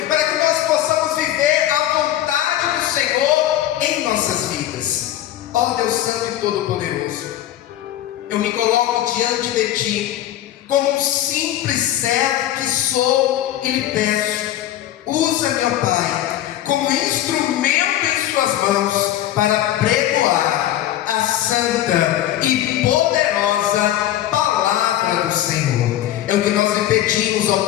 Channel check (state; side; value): quieter; right; 12.8 dB